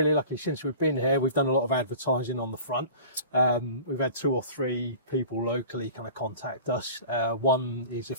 lucky since we've been here. We've done a lot of advertising on the front. We've had 2 or 3 people locally kind of contact us. One is a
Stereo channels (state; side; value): inverted; both; correlation -0.42